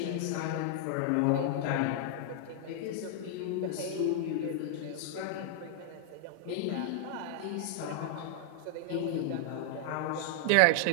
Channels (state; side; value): different; both; correlation 0.00